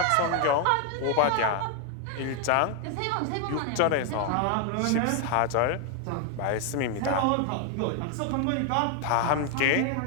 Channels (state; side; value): different; both; correlation 0.00